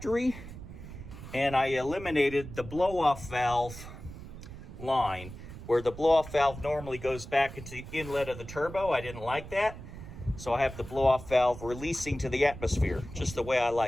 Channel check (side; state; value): right; noise; rumble, 12 dB below the sound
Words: And I eliminated the blow-off valve line, where the blow-off valve normally goes back into the inlet of the turbo. I didn't like that. So I have the blow-off valve releasing to the atmosphere, just the way I